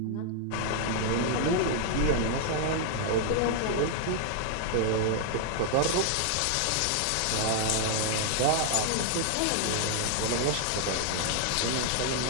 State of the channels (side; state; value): both; different; correlation 0.00